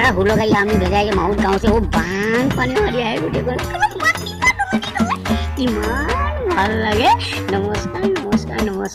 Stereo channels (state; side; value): identical; both; correlation 1.00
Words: 16 গাড়ী আমি ভেজাই মাউত গাঁওছে, বান পানী মাৰি আহে গোটেইখন, ইমান ভাল লাগে। নমস্কাৰ নমস্কাৰ